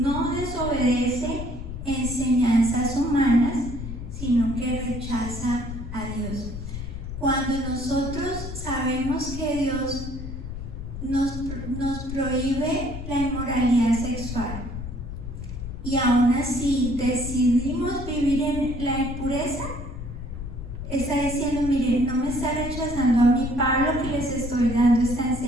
desobedece enseñanzas humanas, sino que rechaza a Dios. Cuando nosotros sabemos que Dios nos prohíbe la inmoralidad sexual y aún así decidimos vivir en la impureza, está diciendo: miren, no me está rechazando a mí, Pablo, que les estoy dando esta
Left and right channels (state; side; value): noise; left; rumble, 8 dB below the sound